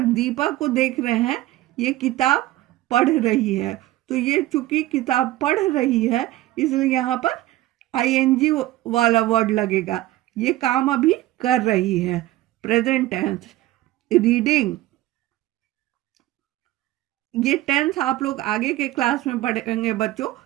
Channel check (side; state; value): left; quieter; 16.1 dB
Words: को देख रहे हैं, ये किताब पढ़ रही है, तो ये चूंकि किताब पढ़ रही है इसलिए यहाँ पर ING वाला वर्ड लगेगा। ये काम अभी कर रही है, प्रेजेंट टेंस। रीडिंग, ये टेंस आप लोग आगे के क्लास में पढ़ेंगे बच्चों,